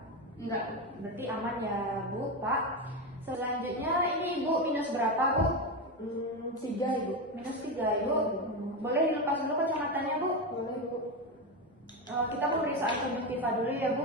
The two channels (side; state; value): both; normal; correlation 0.14